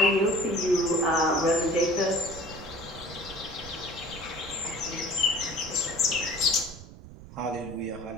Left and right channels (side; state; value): right; noise; rumble, 16 dB below the sound